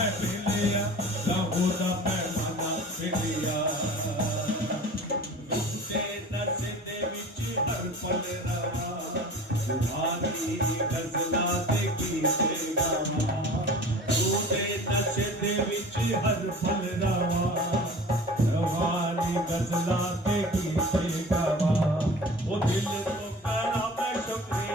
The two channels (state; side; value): normal; both; correlation 0.40